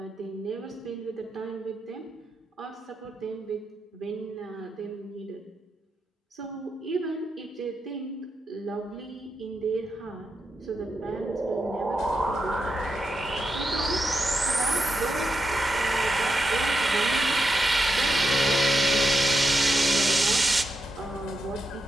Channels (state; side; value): normal; both; correlation 0.85